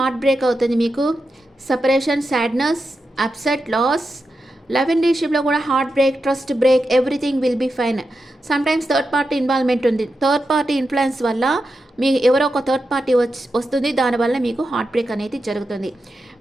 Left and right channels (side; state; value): both; normal; correlation 0.89